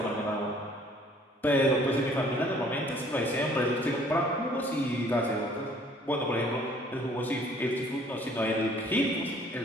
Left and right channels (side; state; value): both; normal; correlation 0.57